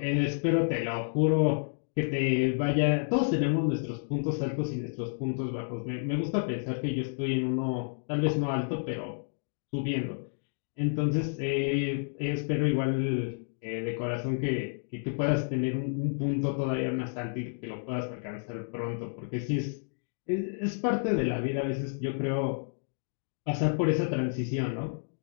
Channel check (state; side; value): silent; right; digital silence